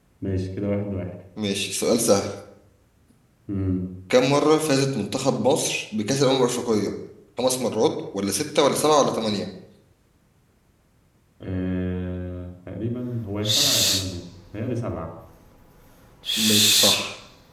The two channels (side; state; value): both; identical; correlation 1.00